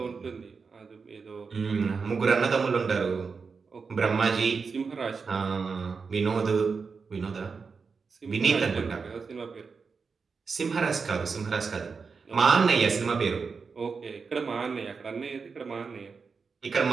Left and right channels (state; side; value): quieter; left; 5.1 dB